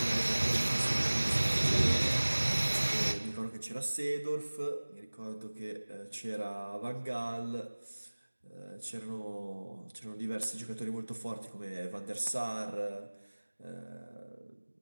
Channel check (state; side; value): inverted; both; correlation -1.00